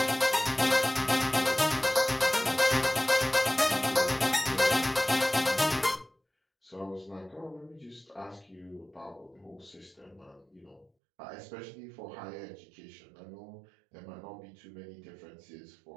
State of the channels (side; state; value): left; drops out; at 10.9 s